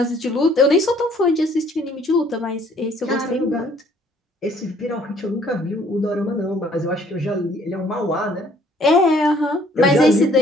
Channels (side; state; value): both; normal; correlation 0.60